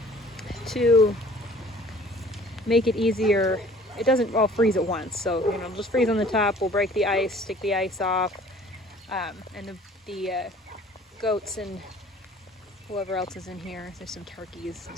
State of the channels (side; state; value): both; normal; correlation 0.52